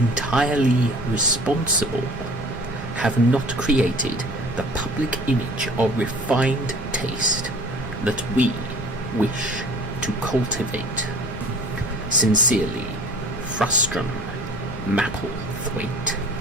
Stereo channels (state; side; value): normal; both; correlation 0.46